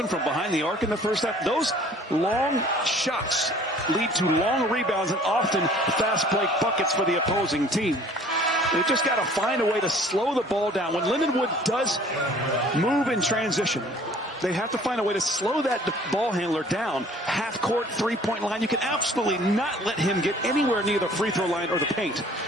from behind the arc in the first half. Those long shots lead to long rebounds and often fast break buckets for the opposing team. They've just got to find a way to slow the ball down. When Lindenwood does move in transition, they have to find a way to slow that ball handler down. Half court, 3-point line. You can absolutely not let him get anywhere near the free throw line or the paint.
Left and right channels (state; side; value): normal; both; correlation 0.52